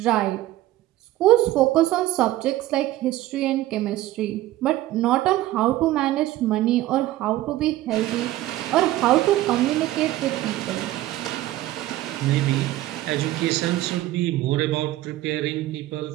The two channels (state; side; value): quieter; left; 15.5 dB